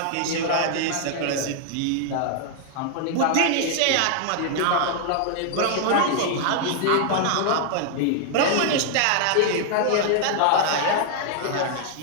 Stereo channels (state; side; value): different; both; correlation 0.00